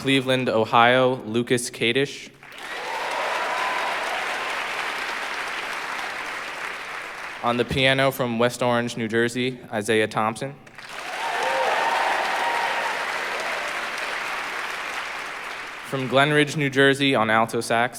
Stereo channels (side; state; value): both; identical; correlation 1.00